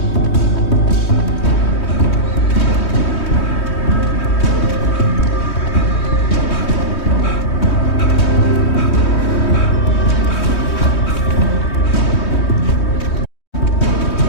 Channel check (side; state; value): right; late; 3.2 ms